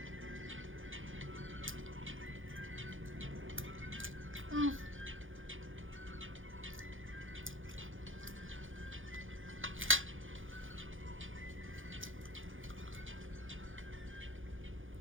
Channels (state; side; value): late; left; 0.58 ms